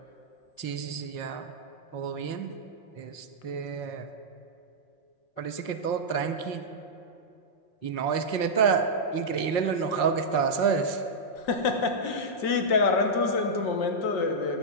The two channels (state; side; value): late; right; 5.6 ms